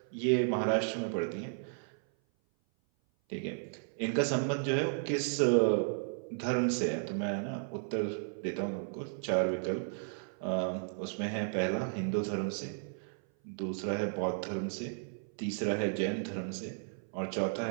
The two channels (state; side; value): silent; left; 55 dB below the other